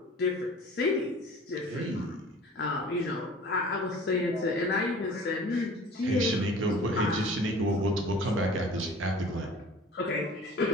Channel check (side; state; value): both; normal; correlation 0.45